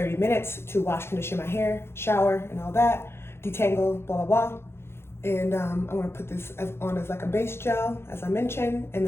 minutes to wash, condition my hair, shower and all that, detangle, blah, blah, blah. And I'm gonna put this on as like a base gel, as I mentioned, and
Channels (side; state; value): right; late; 0.12 ms